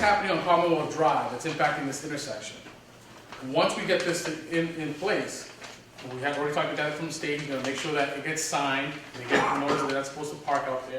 on Commonwealth Drive that's impacting this intersection? Once we get this in place, we have already talked about that from the state, we're gonna make sure that it gets signed, they get the notice that they're not supposed to park out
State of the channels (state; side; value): identical; both; correlation 1.00